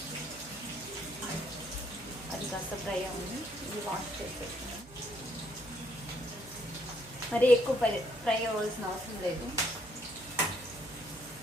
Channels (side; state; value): right; noise; hum, 20 dB below the sound